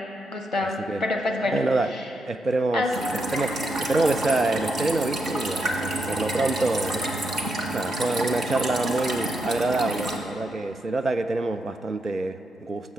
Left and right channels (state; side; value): normal; both; correlation 0.81